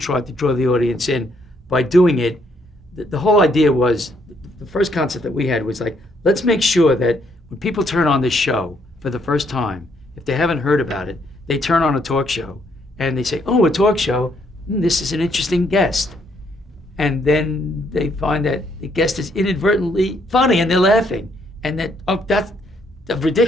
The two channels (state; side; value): normal; both; correlation 0.71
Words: to draw the audience in by doing it, the whole idea was, the first concept that we had was like, let's make sure that when people turn on this show for the first time, if they haven't heard about it, they turn on a talk show and they say, oh, a talk show, this is an interesting guest. And then they find that the guest is inadvertently funny and they're laughing. And that, oh, that's a